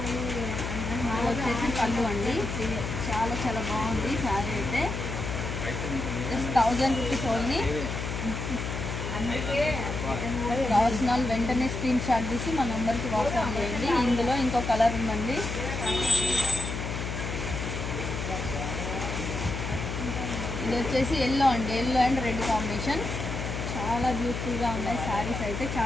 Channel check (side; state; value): left; noise; hum, 4 dB below the sound